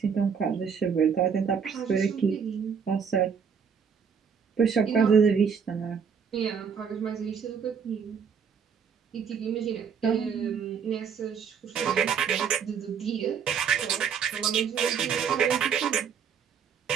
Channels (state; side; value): quieter; left; 6.8 dB